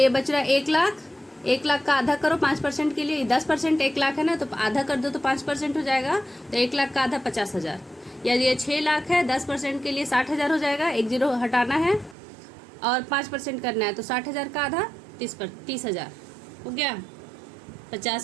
बच रहा है 1 लाख। 1 लाख का आधा करो 5% के लिए, 10% 1 लाख है ना, तो आधा कर दो तो 5% हो जाएगा, तो 1 लाख का आधा 50,000। यदि ये 6 लाख है, 10% के लिए 60,000 हो जाएगा, 1 जीरो हटाना है और 5% करना है, तो 60,000 का आधा 30,000 हो गया।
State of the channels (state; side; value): drops out; left; at 12.2 s